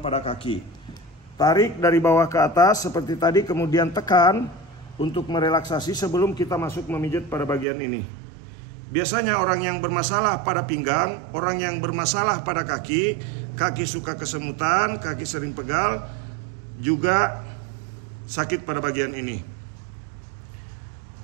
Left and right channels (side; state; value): left; drops out; at 7.7 s